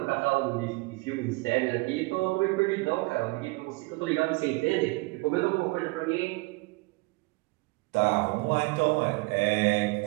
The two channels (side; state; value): left; quieter; 25.2 dB